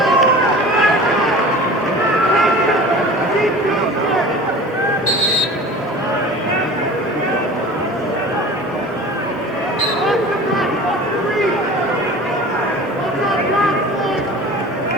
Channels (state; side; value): normal; both; correlation 0.39